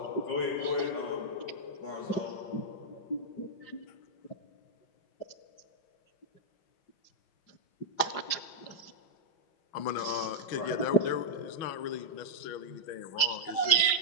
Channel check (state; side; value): late; right; 5.7 ms